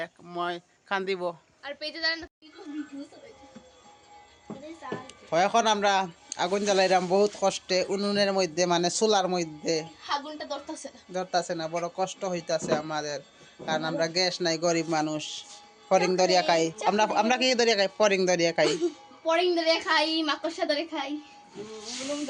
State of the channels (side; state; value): both; identical; correlation 1.00